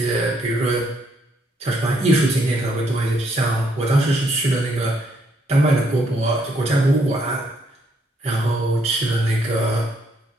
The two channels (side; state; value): both; normal; correlation 0.72